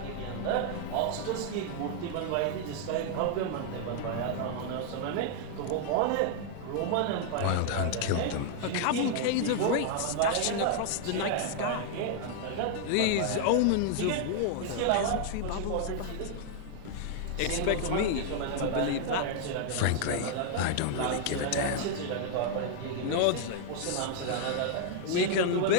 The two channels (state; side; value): different; both; correlation 0.00